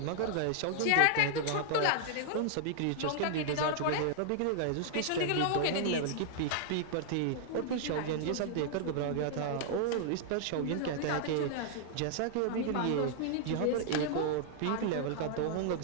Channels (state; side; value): different; both; correlation 0.00